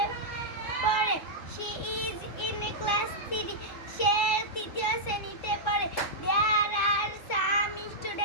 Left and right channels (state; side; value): late; right; 3.6 ms